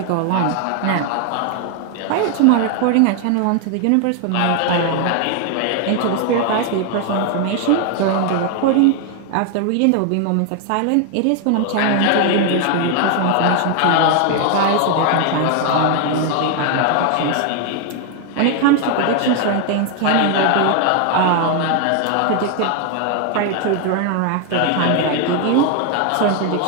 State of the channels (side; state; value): both; different; correlation 0.00